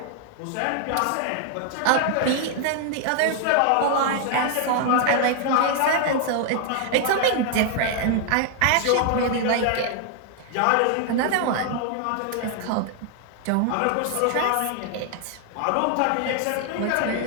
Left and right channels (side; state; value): both; different; correlation 0.00